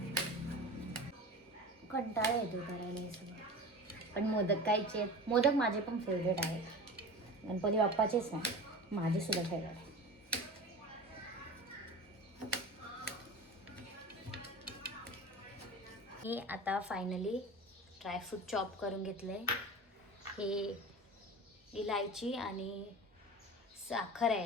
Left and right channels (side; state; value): both; normal; correlation 0.34